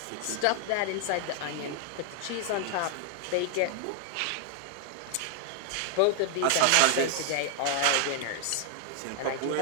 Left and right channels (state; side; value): different; both; correlation 0.00